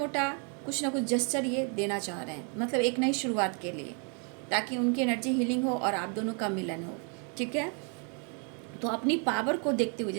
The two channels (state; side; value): quieter; left; 39.1 dB